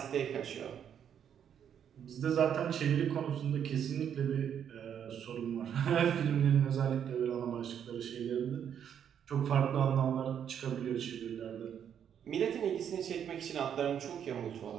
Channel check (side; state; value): left; quieter; 8.7 dB